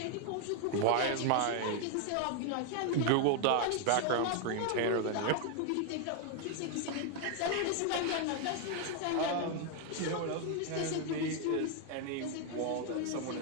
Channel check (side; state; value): both; different; correlation 0.00